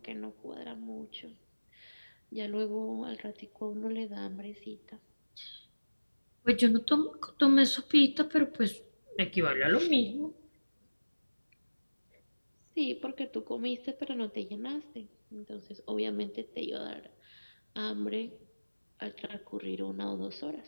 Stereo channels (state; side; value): inverted; both; correlation -1.00